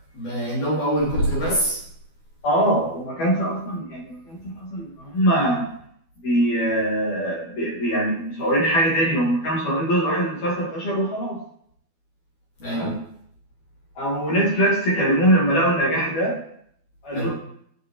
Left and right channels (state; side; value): late; right; 12 ms